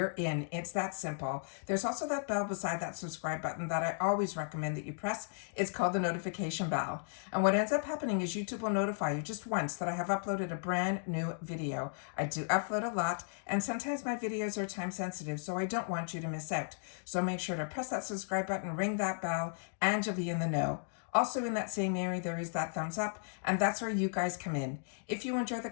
in. It's that simple. There's also that bell beside that subscribe button that I always recommend that you press. It's called the notification bell. And what ends up happening is YouTube will notify you just once that I have uploaded a brand new video. I do upload a lot, and sometimes my videos are time sensitive, so I don't want you to miss out. So make sure to press that subscribe button, ring that bell, and you'll be in the know. Also in that same area, there is that thumbs up, and that's where you guys come in. If you enjoy the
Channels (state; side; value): silent; right; digital silence